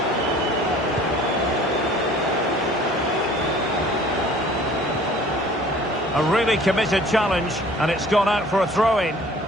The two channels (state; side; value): normal; both; correlation 0.50